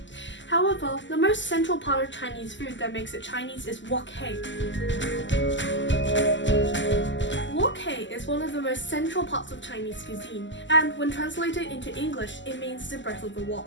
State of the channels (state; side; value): late; right; 0.54 ms